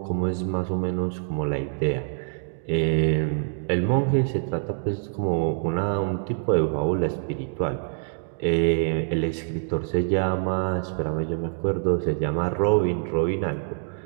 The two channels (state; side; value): silent; left; digital silence